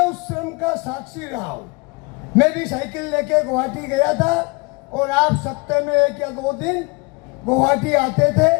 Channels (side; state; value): right; quieter; 28.5 dB